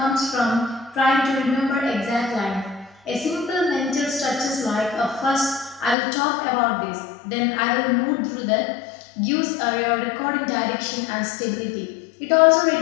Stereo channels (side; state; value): right; drops out; at 6.0 s